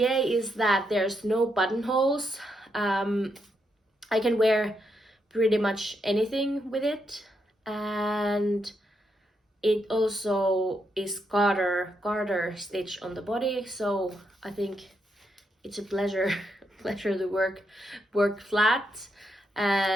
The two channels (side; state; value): both; normal; correlation 0.80